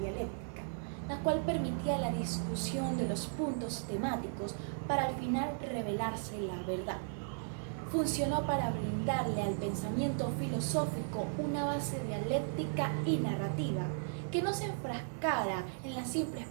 la cual permitía la discusión de los puntos temáticos para al final revelarse la verdad. Funcionó para brindarle al pensamiento filosófico una base dialéctica y narrativa que no se enfrascara en la simple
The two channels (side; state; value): left; silent; digital silence